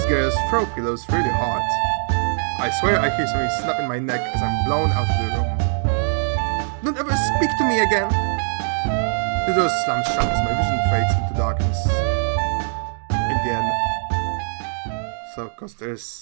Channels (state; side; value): silent; left; digital silence